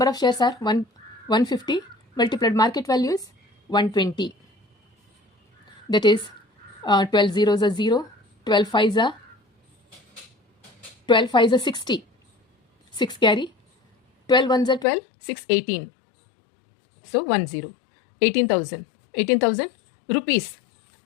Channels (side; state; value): right; drops out; at 14.9 s